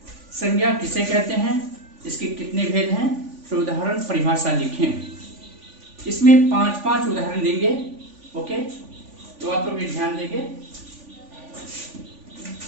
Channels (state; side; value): late; left; 3.5 ms